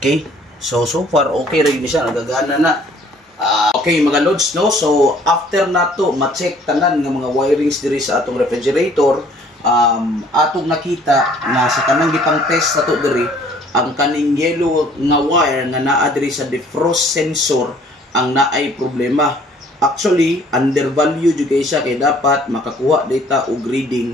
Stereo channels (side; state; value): both; normal; correlation 0.57